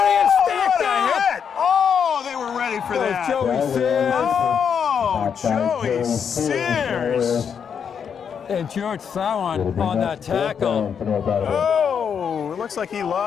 stacked up. Hit. Oh, they were ready for that. Joey Sears. Oh, Joey Sears. And George Sowan on that tackle. Oh, it looks like he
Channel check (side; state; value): right; quieter; 7.3 dB